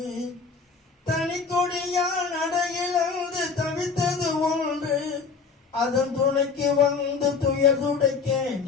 தனி கொடியால் நடையிழந்து தவித்தது ஒன்று, அதன் துணைக்கு வந்து துயர் துடைக்க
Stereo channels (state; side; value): quieter; right; 5.0 dB